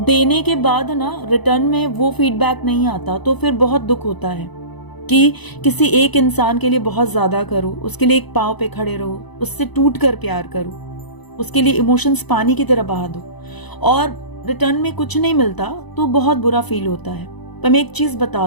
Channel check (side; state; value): right; late; 1.0 ms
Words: के बाद ना रिटर्न में वो फीडबैक नहीं आता, तो फिर बहुत दुख होता है कि किसी एक इंसान के लिए बहुत ज्यादा करो, उसके लिए एक पांव पे खड़े रहो, उससे टूट कर प्यार करो, उसके लिए इमोशंस पानी की तरह बहा दो और रिटर्न में कुछ नहीं मिलता तो बहुत बुरा फील होता है। पर मैं एक चीज